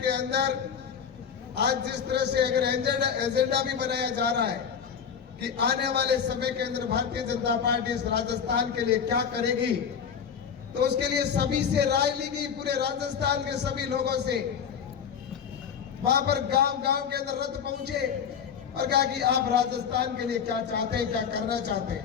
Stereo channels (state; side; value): quieter; right; 7.3 dB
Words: के अंदर आज जिस तरह से अगर एजेंडा भी बनाया जा रहा है कि आने वाले समय के अंदर भारतीय जनता पार्टी इस राजस्थान के लिए क्या करेगी, तो उसके लिए सभी से राय ली गई, पूरे राजस्थान के सभी लोगों से। वहां पर गांव के अंदर रथ पहुंचे और कहा कि आप राजस्थान के लिए क्या चाहते हैं, क्या करना चाहते